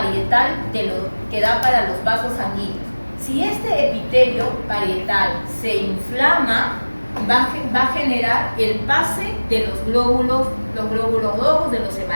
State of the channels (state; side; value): inverted; both; correlation -1.00